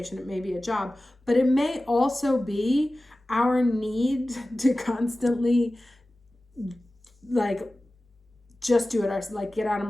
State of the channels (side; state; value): both; normal; correlation 0.96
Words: it may be a job, but it may also be our need to constantly like just do it ourselves, like get out of